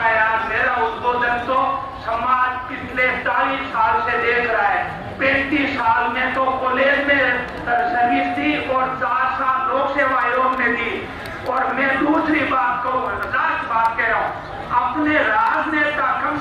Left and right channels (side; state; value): both; identical; correlation 1.00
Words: यार मेरा उद्बोधन तो समाज पिछले 40 साल से देख रहा है। 35 साल में तो कॉलेज में सर्विस दी और 4 साल लोक सेवा आयोग में दी। और मैं दूसरी बात कहूँ, लास्ट बात कह रहा हूँ, अपने राजनेता कम